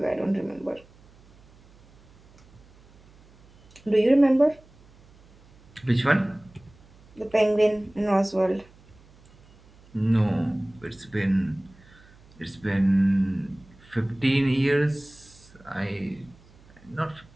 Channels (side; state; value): right; noise; hum, 27 dB below the sound